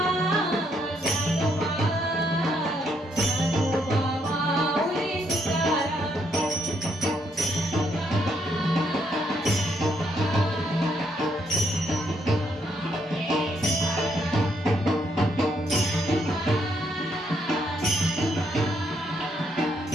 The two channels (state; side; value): normal; both; correlation 0.74